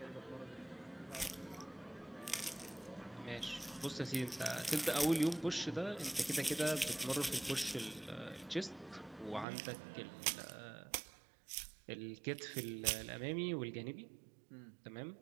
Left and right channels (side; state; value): left; drops out; at 9.5 s